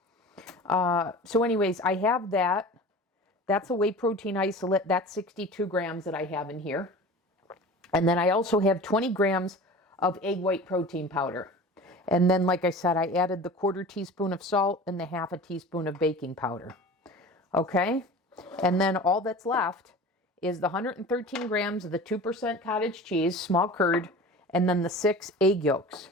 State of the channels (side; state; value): both; normal; correlation 0.37